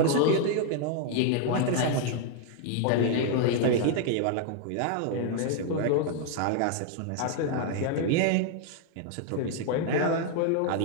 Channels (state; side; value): different; both; correlation 0.00